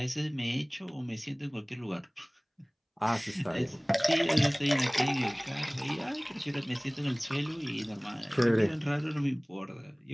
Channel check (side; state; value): both; identical; correlation 1.00